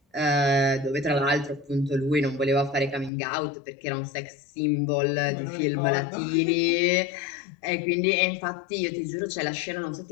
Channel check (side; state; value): right; drops out; at 3.1 s